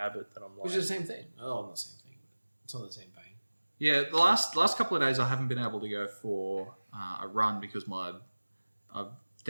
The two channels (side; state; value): both; inverted; correlation -1.00